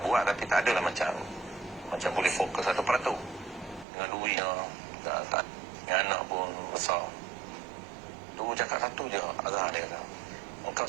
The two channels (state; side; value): drops out; left; at 3.9 s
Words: buat tapi tak ada lah macam boleh fokus 1%. Dengan duitnya, tak, dengan anak pun besar. Tu cakap satu je arah dia kata. Engkau